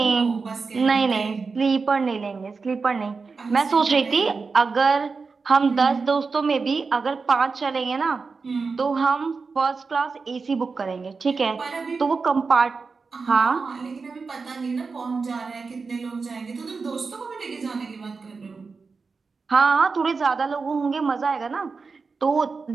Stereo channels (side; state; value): left; quieter; 4.6 dB